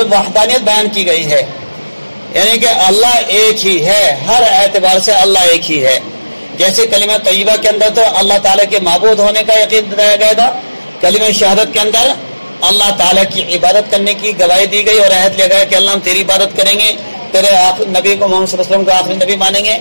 وحدانیت بیان کی گئی ہے، یعنی کہ اللہ ایک ہی ہے، ہر اعتبار سے اللہ ایک ہی ہے۔ جیسے کلمہ طیبہ کے اندر تو اللہ تعالیٰ کے معبود ہونے کا یقین دلایا گیا تھا، کلمہ شہادت کے اندر اللہ تعالیٰ کی عبادت کرنے کی گواہی دی گئی اور عہد لیا گیا کہ اللہ ہم تیری عبادت کریں گے، تیرے نبی کو محمد صلی اللہ علیہ وسلم کو آخری نبی مانیں گے۔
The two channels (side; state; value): both; inverted; correlation -1.00